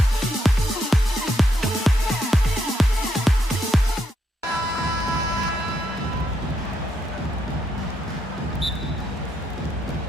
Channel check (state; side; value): normal; both; correlation 0.78